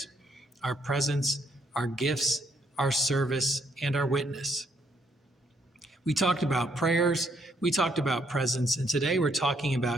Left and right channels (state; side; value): normal; both; correlation 0.72